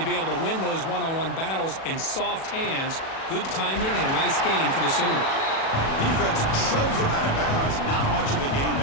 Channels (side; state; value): right; late; 37 ms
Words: be able to win those one-on-one battles in soft hands. Good timing and a nice gain for the Sooners. Defense shoves him out of bounds. Not much of a gain